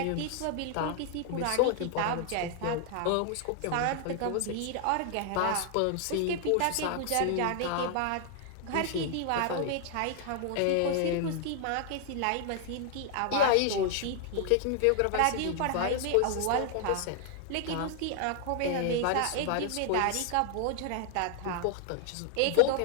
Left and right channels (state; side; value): different; both; correlation 0.00